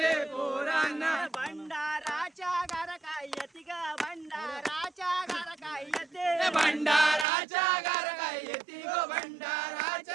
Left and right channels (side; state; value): left; drops out; at 7.2 s